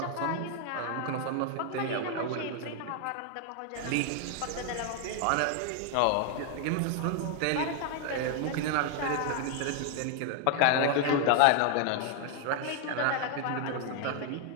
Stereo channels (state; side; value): different; both; correlation 0.00